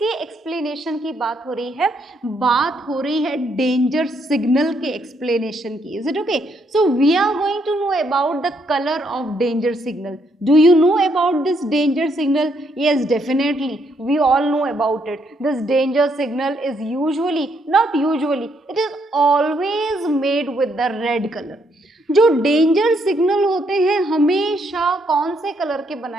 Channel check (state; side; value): normal; both; correlation 0.74